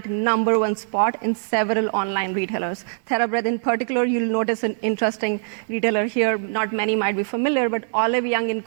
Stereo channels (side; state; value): left; silent; digital silence